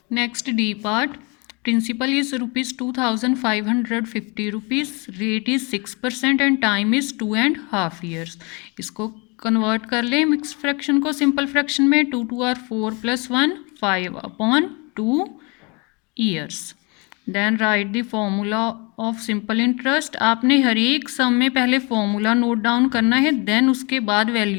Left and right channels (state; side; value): quieter; right; 30.0 dB